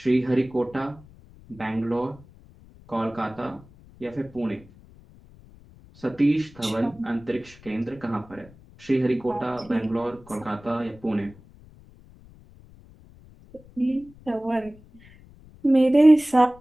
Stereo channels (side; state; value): left; noise; rumble, 24 dB below the sound